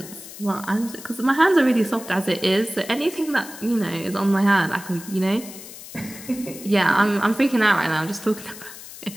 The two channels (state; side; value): noise; left; hiss, 15 dB below the sound